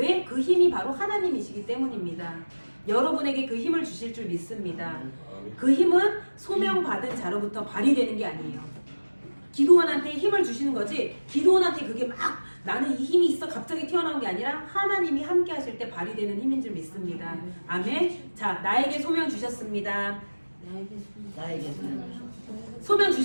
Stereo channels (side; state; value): both; inverted; correlation -1.00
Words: 그 힘이 바로 하나님이시기 때문입니다. 여러분에게 그 힘을 주실 줄 믿습니다. 그 힘은 소명받은 자로부터 발휘되는 게 아니에요. 기도원한테 힘을 주시는 거지 기도원한테 그게 막 나는 이 힘이 있어 갑자기 튀어나온 게 아니라 하나님이 함께 하실 때 발휘되는 힘인 줄 믿습니다. 아멘. 자, 나에게 소명 주셨습니다. 나에게 소명